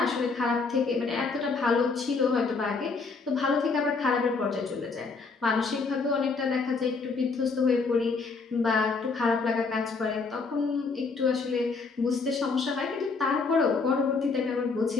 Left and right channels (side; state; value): right; quieter; 4.4 dB